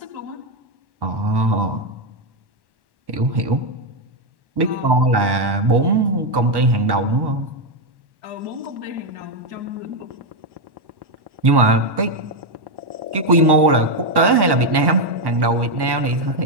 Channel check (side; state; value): left; late; 1.1 ms